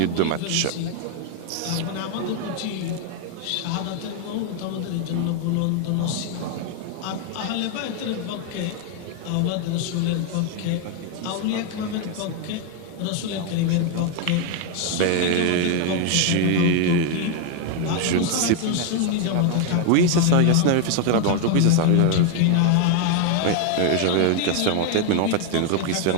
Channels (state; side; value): different; both; correlation 0.00